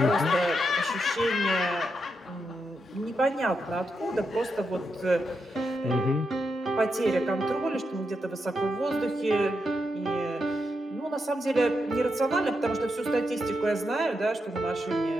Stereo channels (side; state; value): both; normal; correlation 0.84